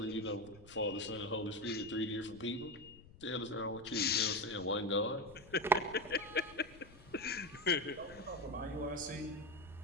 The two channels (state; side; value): noise; left; rumble, 21 dB below the sound